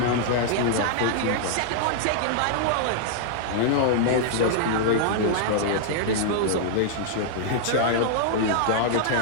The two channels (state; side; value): different; both; correlation -0.01